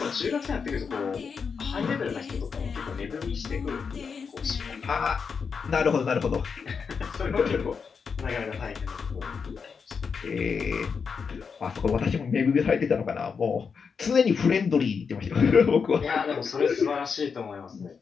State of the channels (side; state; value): right; quieter; 5.8 dB